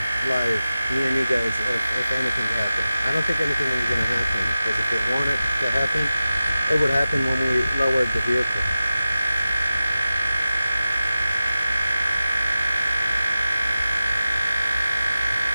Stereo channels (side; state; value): both; inverted; correlation -0.94